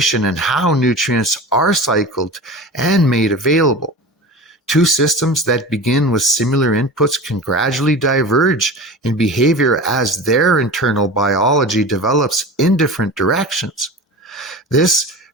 in how nutrients are cycled and made available. Two systems that begin with similar inputs can gradually diverge in behavior as their internal biology develops in different directions. This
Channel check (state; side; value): normal; both; correlation 0.32